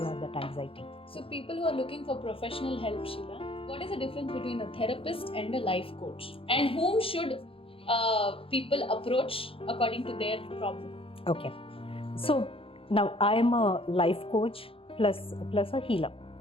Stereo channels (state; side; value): late; right; 0.27 ms